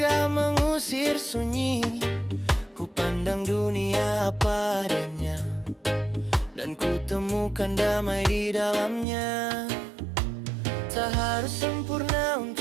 mengusir sunyi. Ku pandang dunia apa adanya, dan ku temukan damai di dalamnya. Tak harus sempurna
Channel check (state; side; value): drops out; left; at 9.1 s